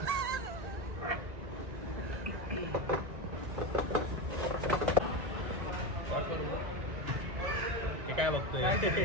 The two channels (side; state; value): left; late; 1.9 ms